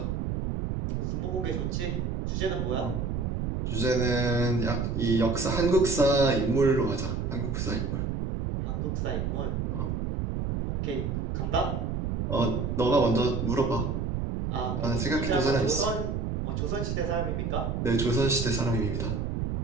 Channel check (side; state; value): right; noise; rumble, 1 dB below the sound